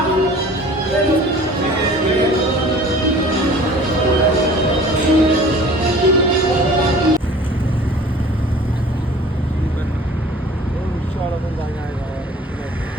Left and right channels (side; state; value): both; normal; correlation 0.47